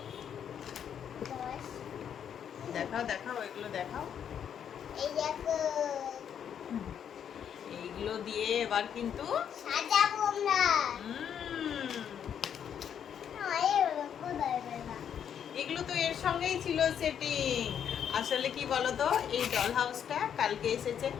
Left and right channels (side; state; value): right; quieter; 8.6 dB